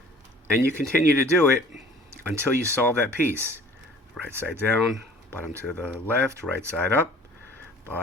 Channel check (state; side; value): normal; both; correlation 0.49